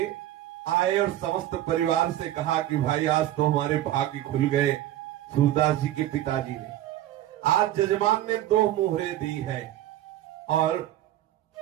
आए और समस्त परिवार से कहा कि भाई आज तो हमारे भाग्य खुल गए। सूरदास जी के पिताजी ने आज जजमान ने 2 मोहरें दी है और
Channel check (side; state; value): left; quieter; 13.5 dB